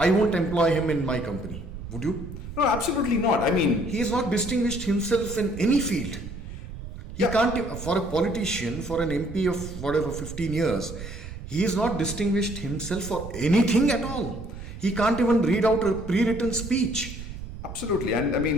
won't employ him in my company. Would you? No, absolutely not. He has not distinguished himself in any field. He can't, for a politician, for an MP of whatever 15 years, he has not distinguished himself for anything at all. He can't even read out a pre-written speech. Absolutely,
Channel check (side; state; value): right; noise; rumble, 11 dB below the sound